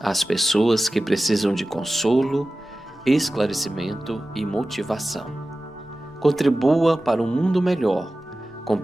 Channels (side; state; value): both; normal; correlation 0.95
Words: pessoas que precisam de consolo, esclarecimento e motivação. Contribua para um mundo melhor, com